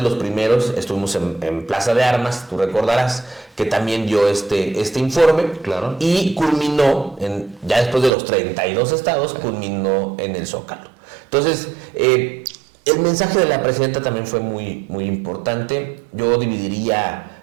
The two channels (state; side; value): drops out; left; at 8.1 s